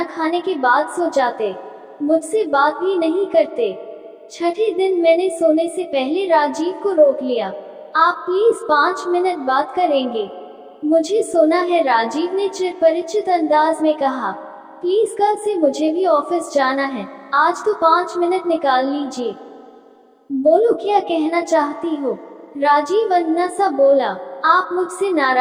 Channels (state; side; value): identical; both; correlation 1.00